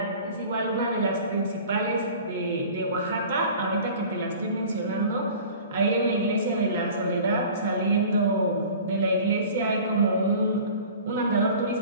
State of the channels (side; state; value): both; inverted; correlation -0.43